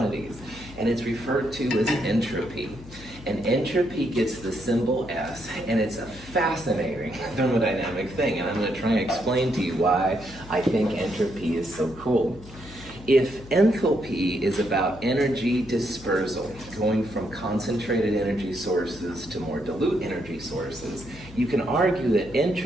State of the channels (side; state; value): left; noise; hum, 17 dB below the sound